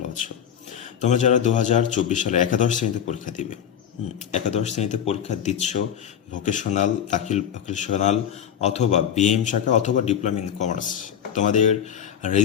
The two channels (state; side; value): quieter; right; 9.0 dB